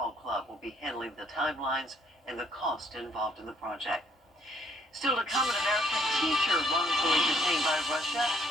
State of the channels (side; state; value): both; normal; correlation 0.66